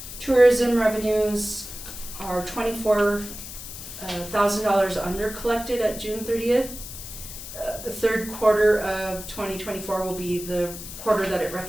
Tourism revenues are $24,000 under collected at June 30th. The third quarter of 2024 will be the quarter that it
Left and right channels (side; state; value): left; noise; hiss, 11 dB below the sound